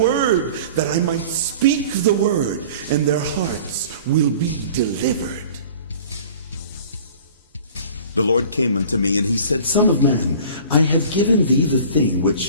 that I might speak the word, and their hearts will be delivered. The Lord came unto me, and he said, Son of man, I have given thee the thing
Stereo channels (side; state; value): both; inverted; correlation -0.44